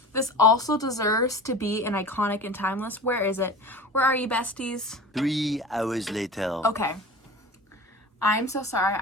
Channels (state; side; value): normal; both; correlation 0.35